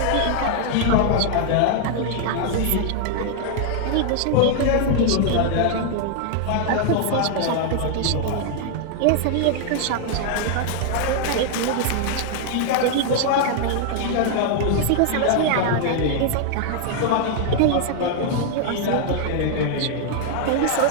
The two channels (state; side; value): different; both; correlation 0.00